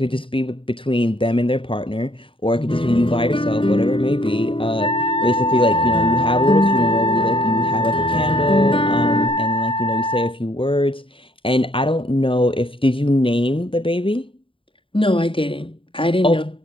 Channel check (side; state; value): right; late; 0.25 ms